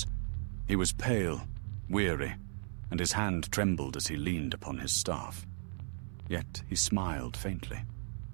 He was pale, weary, and his hand trembled as he leaned upon his staff. Yet he smiled faintly.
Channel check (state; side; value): silent; left; 54 dB below the other